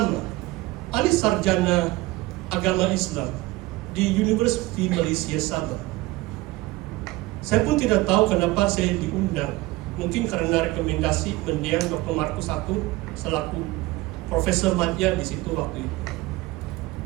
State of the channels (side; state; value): left; quieter; 19.7 dB